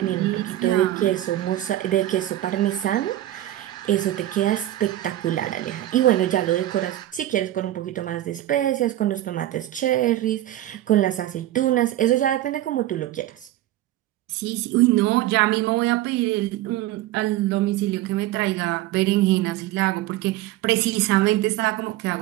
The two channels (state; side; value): quieter; left; 14.3 dB